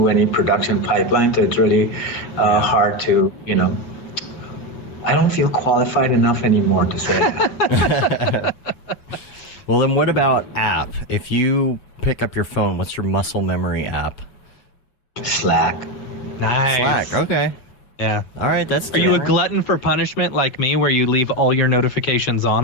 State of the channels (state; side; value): late; right; 8.0 ms